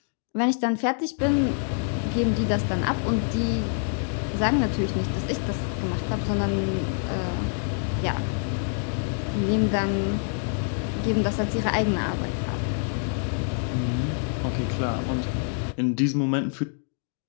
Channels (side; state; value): right; silent; 61 dB below the other